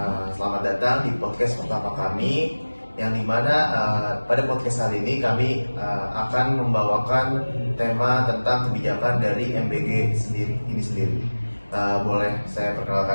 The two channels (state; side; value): inverted; both; correlation -1.00